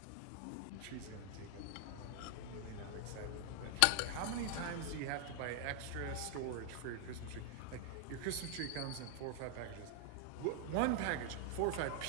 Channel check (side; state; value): both; different; correlation 0.00